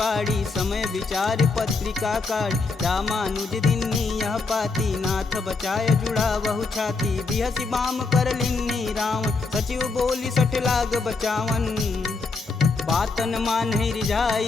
समय विचार पत्रिका काढ़। रामानुज दिन्नी यह पाती, नाथ बचाय जुड़ा बहु छाती। बिहसी बाम कर लिन्नी रावण, सचिव बोली सठ लाग बचावन। बातन मानहि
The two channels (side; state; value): right; quieter; 4.0 dB